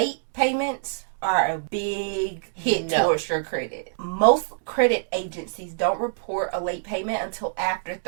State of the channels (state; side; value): silent; left; digital silence